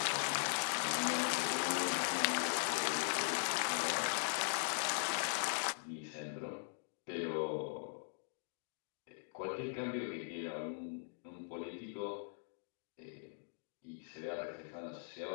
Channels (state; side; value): silent; right; digital silence